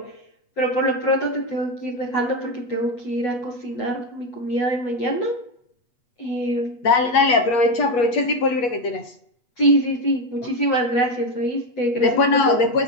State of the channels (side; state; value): right; late; 8.2 ms